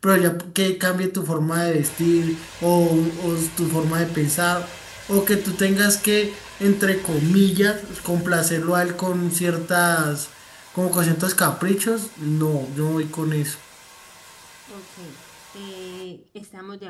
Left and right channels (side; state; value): both; identical; correlation 1.00